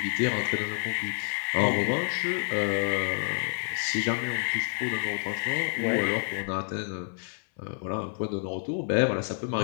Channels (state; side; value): silent; right; 59 dB below the other